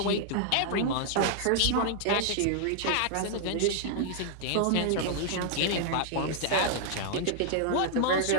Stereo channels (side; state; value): both; different; correlation -0.01